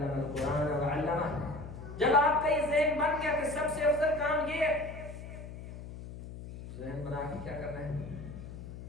القرآن وعلمہ. جب آپ کا یہ ذہن بن گیا کہ سب سے افضل کام یہ ہے، ذہن بنا کے کیا کرنا ہے؟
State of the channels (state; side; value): noise; left; hum, 12 dB below the sound